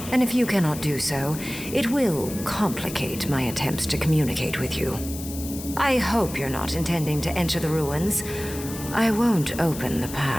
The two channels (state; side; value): noise; left; hiss, 11 dB below the sound